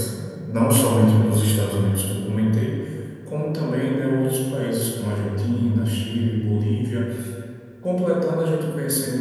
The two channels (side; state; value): both; identical; correlation 1.00